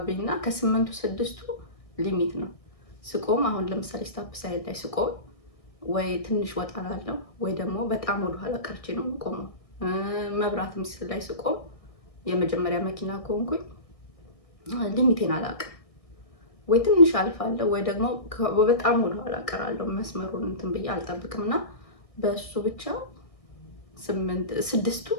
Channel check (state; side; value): late; right; 1.6 ms